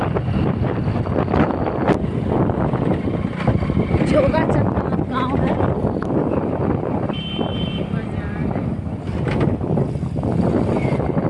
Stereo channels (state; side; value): identical; both; correlation 1.00